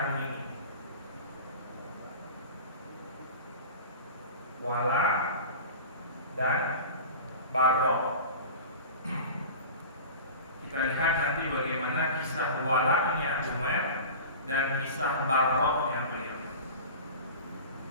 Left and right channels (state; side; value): inverted; both; correlation -0.35